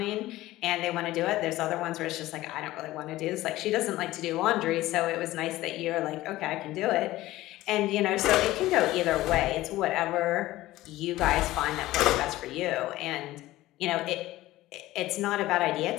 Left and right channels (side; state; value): right; quieter; 16.7 dB